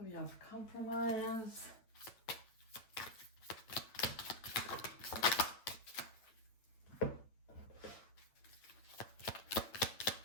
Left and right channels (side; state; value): right; late; 9.0 ms